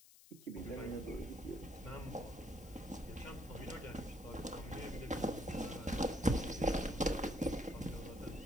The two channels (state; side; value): noise; left; hiss, 21 dB below the sound